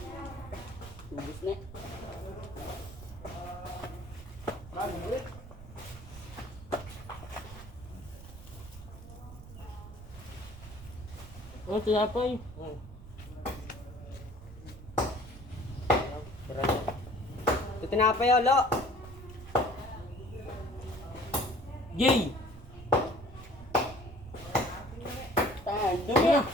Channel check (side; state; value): right; noise; rumble, 15 dB below the sound